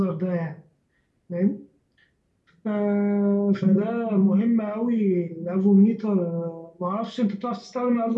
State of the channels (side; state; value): both; identical; correlation 1.00